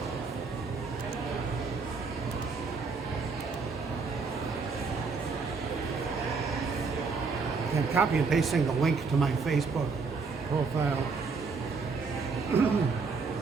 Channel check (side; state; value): left; quieter; 4.6 dB